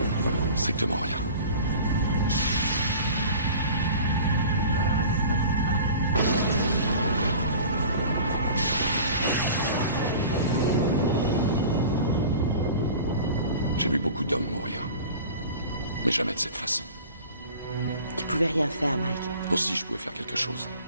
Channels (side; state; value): both; inverted; correlation -0.41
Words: Strictement rien. J'ai vu beaucoup d'hommes mourir. Mais jamais de cette façon. Tu pouvais rien faire, Mike. Aussi, je pouvais faire quelque chose.